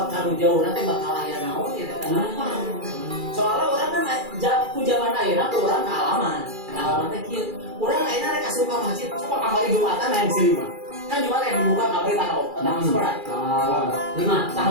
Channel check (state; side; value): late; left; 2.3 ms